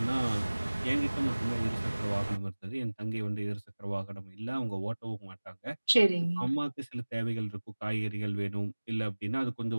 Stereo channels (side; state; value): both; inverted; correlation -1.00